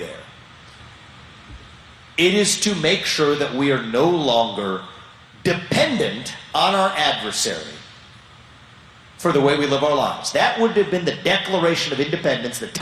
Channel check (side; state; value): both; identical; correlation 1.00